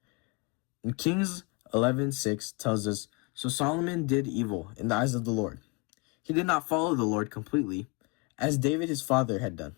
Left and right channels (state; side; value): quieter; right; 29.5 dB